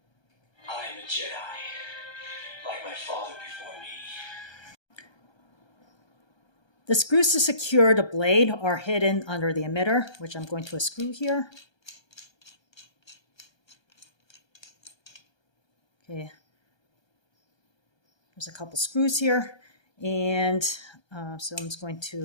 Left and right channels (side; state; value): right; late; 1.3 ms